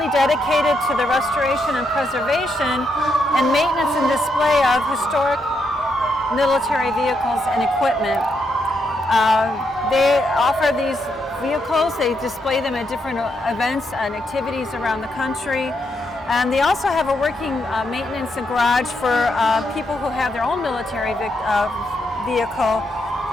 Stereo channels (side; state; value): both; normal; correlation 0.80